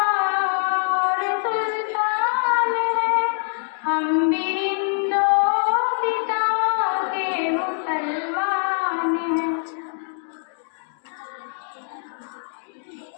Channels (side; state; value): right; silent; 63 dB below the other